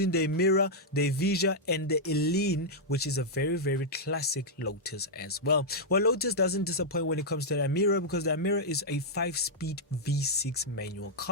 the Emira, the Evija, and the Eline, which is a very classic Lotus as well. Well, Lotus doesn't disappoint when it comes to the Emira, because the Emira is a 5-speed V6 manual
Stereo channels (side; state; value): both; normal; correlation -0.06